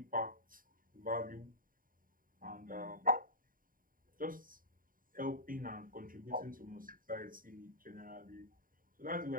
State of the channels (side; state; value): left; late; 0.41 ms